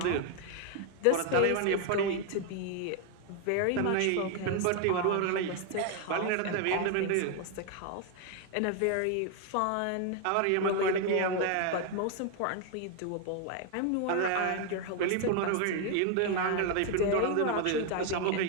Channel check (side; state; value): both; different; correlation 0.01